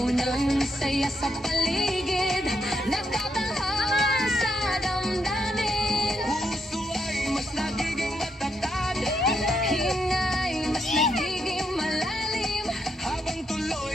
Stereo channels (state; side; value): normal; both; correlation 0.79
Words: ng saya sa paligid, nagtatahan sa damdamin. Puso ay mas nagiging matatag, Hingay mas nagiging malalim. habang